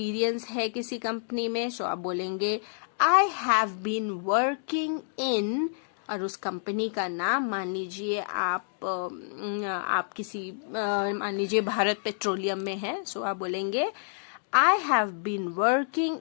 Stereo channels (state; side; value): silent; right; digital silence